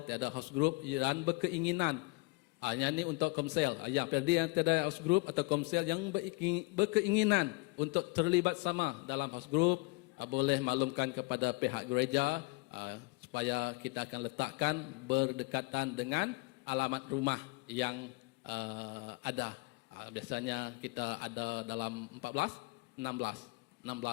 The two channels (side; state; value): right; quieter; 25.0 dB